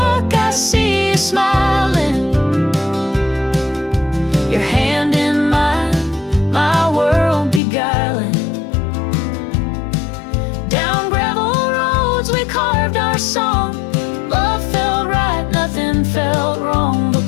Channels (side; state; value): right; drops out; at 7.6 s